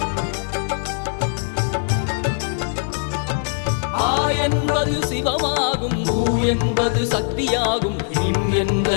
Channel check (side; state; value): right; silent; digital silence